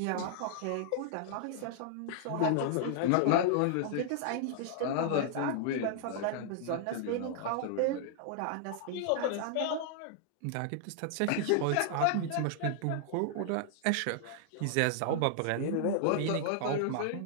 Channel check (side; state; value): both; different; correlation -0.01